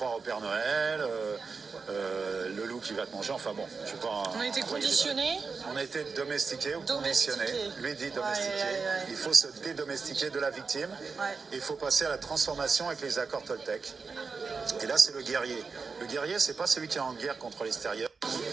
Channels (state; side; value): quieter; left; 4.8 dB